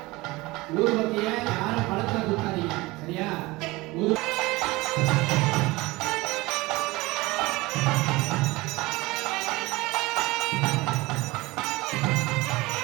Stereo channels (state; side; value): quieter; left; 21.5 dB